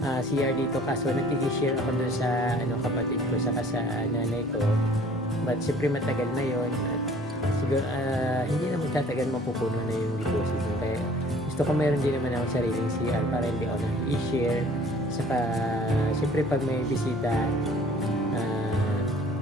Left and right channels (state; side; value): normal; both; correlation 0.52